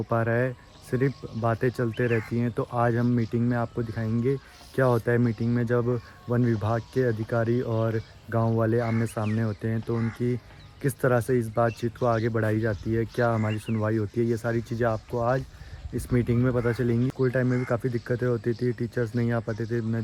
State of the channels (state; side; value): identical; both; correlation 1.00